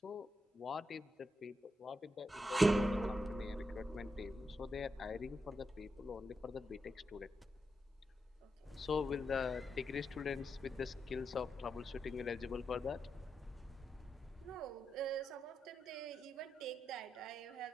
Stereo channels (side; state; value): both; normal; correlation 0.86